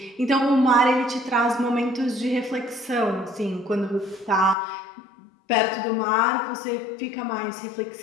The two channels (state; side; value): drops out; right; at 4.5 s